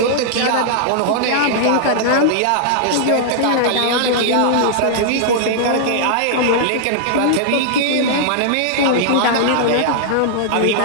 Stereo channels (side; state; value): both; different; correlation -0.01